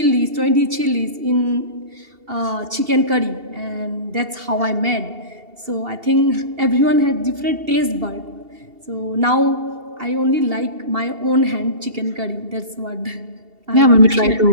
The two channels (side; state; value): left; late; 2.7 ms